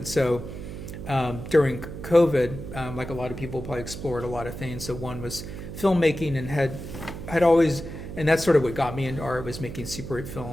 so during COVID, like a lot of people, probably explored a lot of things. So one was filmmaking, and had always, and that's sort of what got me into art, was making Super 8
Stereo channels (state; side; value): noise; right; hum, 9 dB below the sound